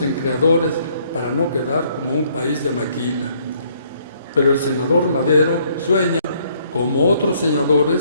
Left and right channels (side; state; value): both; inverted; correlation -0.66